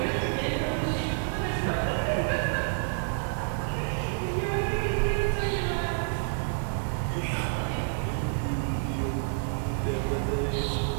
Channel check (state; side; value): silent; left; digital silence